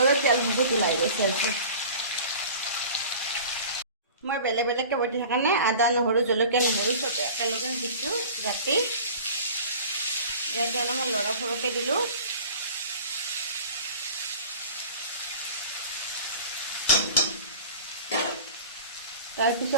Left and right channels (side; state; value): both; inverted; correlation -0.41